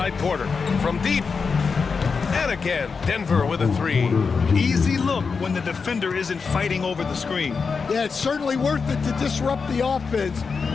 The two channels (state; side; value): quieter; right; 5.2 dB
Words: Porter. From deep. And again, Denver with a 3. Easy look when the defender isn't fighting over the screen. Yeah, it's certainly worth it to disrupt the offense.